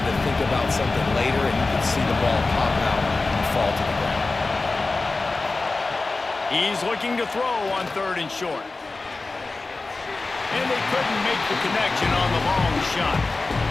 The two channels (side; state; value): right; quieter; 3.5 dB